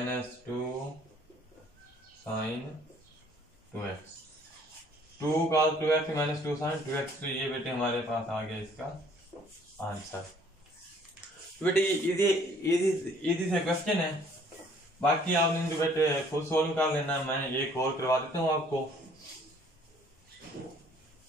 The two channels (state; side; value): normal; both; correlation 0.59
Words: 2 sine 2x, 2 cos 2x minus 2 sine 2x। तो ये बेटे हमारे पास आ गया इसका आंसर। तो बेटे ये इजी से क्वेश्चन है, बाकी आपने जो बेटे खुद सोल्व कर लेना, मैं एक और करवा देता हूँ आपको,